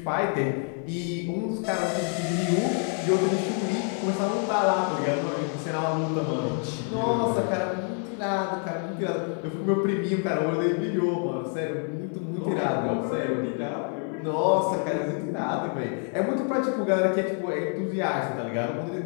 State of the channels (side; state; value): right; quieter; 39.7 dB